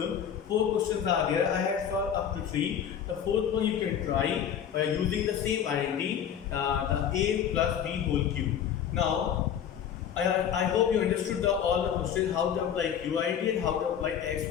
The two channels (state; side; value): quieter; right; 8.8 dB